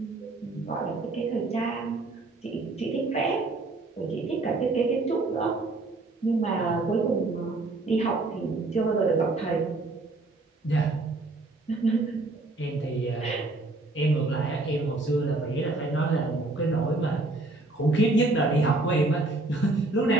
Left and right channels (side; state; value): left; quieter; 3.1 dB